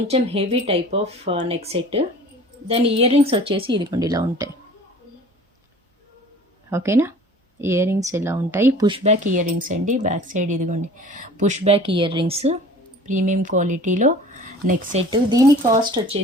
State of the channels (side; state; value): both; normal; correlation 0.45